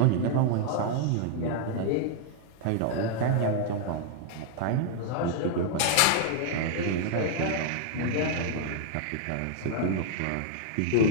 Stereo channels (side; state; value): both; different; correlation -0.01